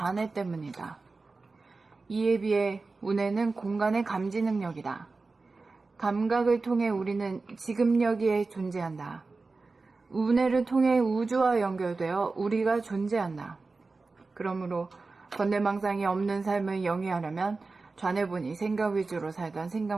때문이다. 이에 비해 운해는 공간의 감지 능력이다. 감각을 통해 우리는 지금 여기에 존재한다. 운해를 통해 우주와 연결되어 우리가 존재한다. 그러므로 번뇌망상이 없는 삶을 영위하려면 좌뇌 보니 생각 위주로 살던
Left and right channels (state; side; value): quieter; left; 3.8 dB